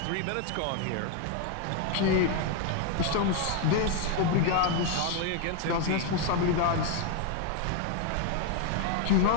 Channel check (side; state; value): both; different; correlation 0.01